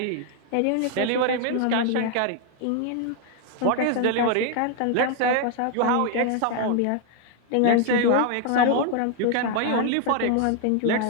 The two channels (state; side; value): different; both; correlation 0.00